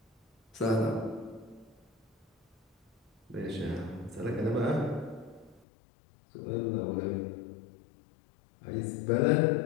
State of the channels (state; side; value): drops out; right; at 5.6 s